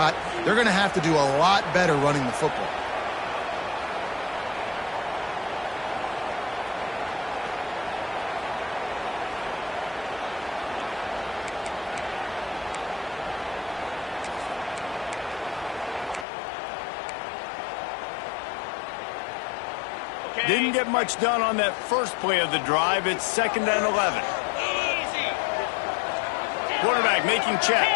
they're going to have to do a lot better running the football. Didn't get much done on that first play of the drive. It's 2nd and 11. Quarterback making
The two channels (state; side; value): drops out; right; at 16.2 s